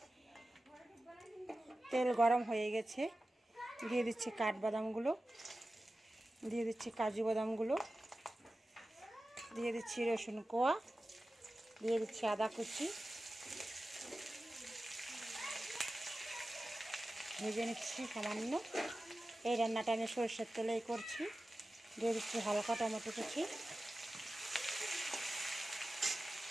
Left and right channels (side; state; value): both; normal; correlation 0.95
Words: তেল গরম হয়ে গেছে, দিয়ে দিচ্ছি কাঠবাদামগুলো, দিয়ে দিচ্ছি কাজু বাদামগুলো, দিয়ে দিচ্ছি রসুন কোয়া, দিয়ে দিচ্ছি আদা কুচি, ভেজে নিচ্ছি সামান্য। এই রান্নাটা আমি সরষের তেলেই করছি। দিয়ে দিচ্ছি হালকা টমেটো কুচি,